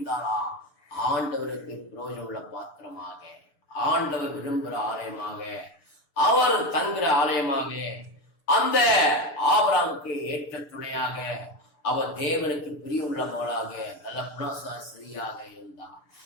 ஆண்டவருக்கு பிரயோஜனம் உள்ள பாத்திரமாக, ஆண்டவர் விரும்புகிற ஆலயமாக, அவர் தங்குற ஆலயமாக, அந்த ஆபிரகாமுக்கு ஏற்ற துணையாக, அவர் தேவனுக்கு பிரியமுள்ள மகளாக, நல்ல குணசாஸ்திரியாக இருந்தார்.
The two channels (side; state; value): right; late; 6.8 ms